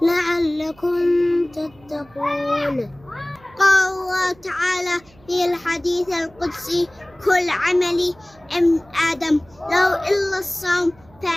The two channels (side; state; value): right; noise; hum, 28 dB below the sound